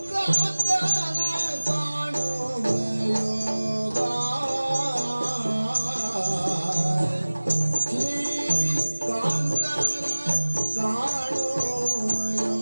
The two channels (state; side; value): inverted; both; correlation -1.00